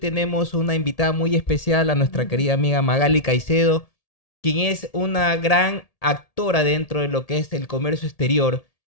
una invitada muy especial, a nuestra querida amiga Magali Caicedo, quien es una gran actora dentro de lo que es el comercio exterior.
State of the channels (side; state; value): right; late; 1.8 ms